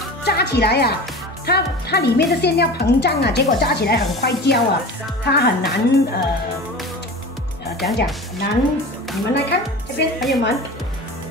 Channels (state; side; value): normal; both; correlation 0.34